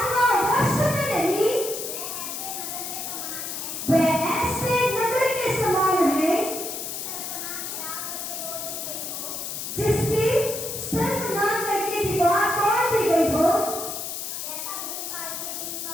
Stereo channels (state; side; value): noise; left; hiss, 5 dB below the sound